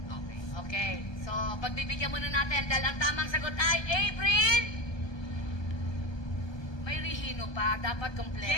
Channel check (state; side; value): late; right; 1.3 ms